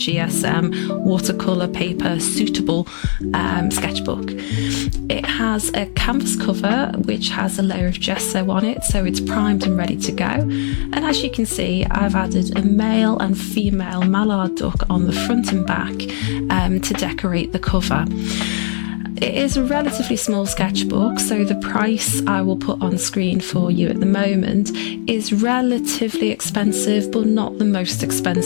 watercolor paper suitable sketchbook. It has a canvas cover which has a layer of gesso on it, so it's primed and ready to go. And as you can see, I've added a male and female mallard duck on the front and back to decorate the cover. It is a relatively small sketchbook, so the price I will put on screen for you at the moment is relatively expensive, but not the most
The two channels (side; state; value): right; silent; 60 dB below the other